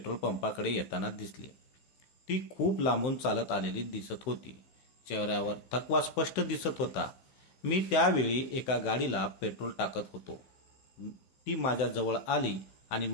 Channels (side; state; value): right; late; 16 ms